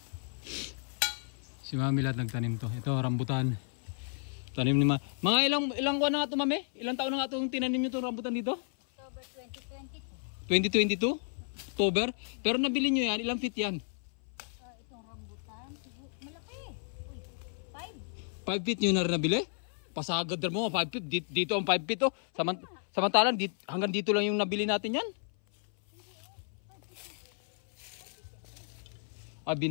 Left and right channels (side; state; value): right; silent; 56 dB below the other